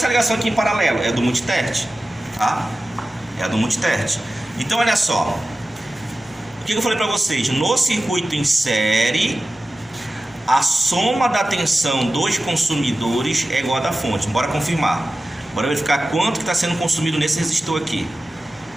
ligação aqui em paralelo é do multitert, tá? É a do multitert. Então olha só. O que eu falei para vocês? No circuito em série, a soma da tensão dos consumidores é igual a da fonte. Bora confirmar. Bora verificar quanto que está sendo consumido nesse resistor aqui.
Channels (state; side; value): normal; both; correlation 0.95